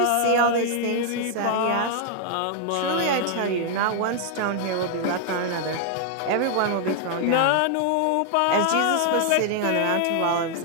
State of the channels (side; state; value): both; different; correlation 0.00